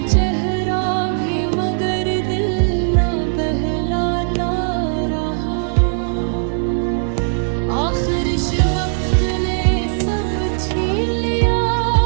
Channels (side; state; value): left; silent; digital silence